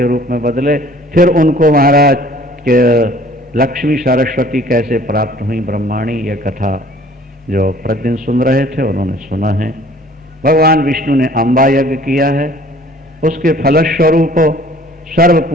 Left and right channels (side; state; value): both; normal; correlation 0.53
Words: रूप में बदले, फिर उनको महाराज के लक्ष्मी सरस्वती कैसे प्राप्त हुई ब्रह्माणी, यह कथा जो प्रतिदिन सुन रहे थे उन्होंने सुना है। भगवान विष्णु ने अम्बा यज्ञ किया है, उसके फलस्वरूप सर्व